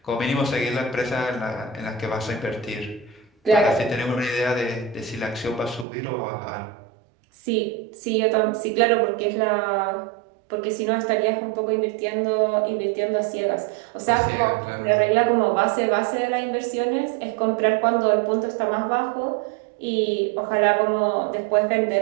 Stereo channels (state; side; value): drops out; left; at 5.9 s